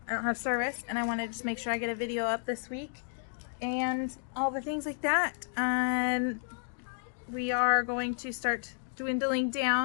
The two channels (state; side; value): silent; right; digital silence